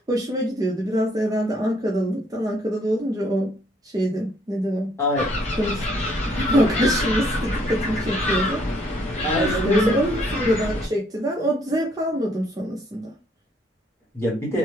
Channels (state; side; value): normal; both; correlation 0.67